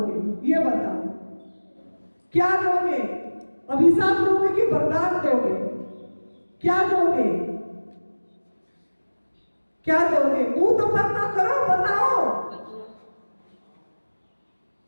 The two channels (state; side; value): inverted; both; correlation -1.00